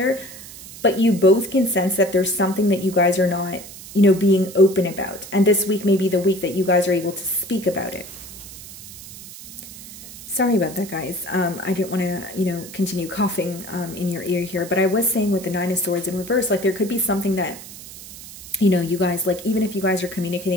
but you both can sense that there's something that you guys are not, you know, being open about. And this week may be the week that you guys are able to speak about it. Sorry about that, guys. I didn't want to, you know, continue coughing in your ear here, but I was saying with the Nine of Swords in reverse, like there could be something that, you know, you guys, like, even if you guys are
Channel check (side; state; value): right; noise; hiss, 15 dB below the sound